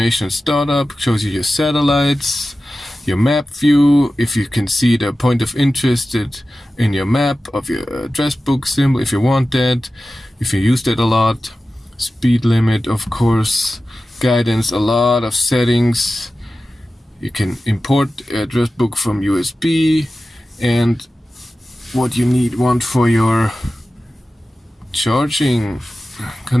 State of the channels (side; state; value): both; normal; correlation 0.94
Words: startup, shows you your satellites, your map view, if you can see the point of interest in your map of your address book symbol, if you want that, if you use that a lot. Speed limit, of course, guidance, a lot of settings. You can import address book from USB, and what you want for your charging